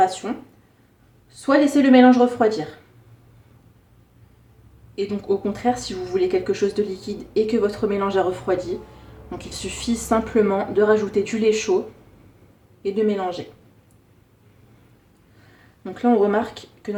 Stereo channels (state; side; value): identical; both; correlation 1.00